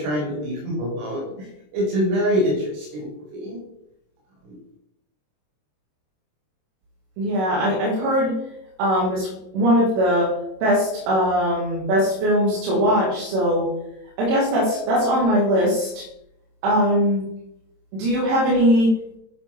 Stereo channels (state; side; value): late; left; 27 ms